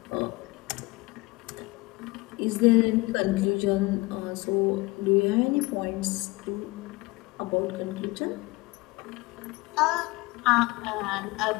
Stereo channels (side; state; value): right; quieter; 22.8 dB